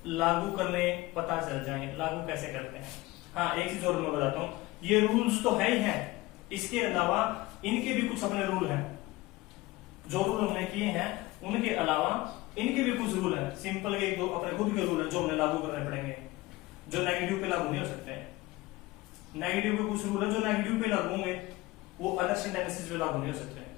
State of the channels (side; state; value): right; quieter; 19.7 dB